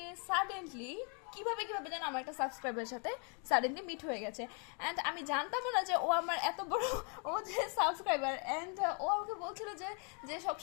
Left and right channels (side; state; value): right; quieter; 38.5 dB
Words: suddenly কিভাবে যেন আমার একটা সাবস্ক্রাইবারের সাথে suddenly meet হয়ে গেছে। And আমি জানতাম না যে ও আমার এত বড় ও যে সাবস্ক্রাইবার। অ্যান্ড ও আমাকে বলছিল যে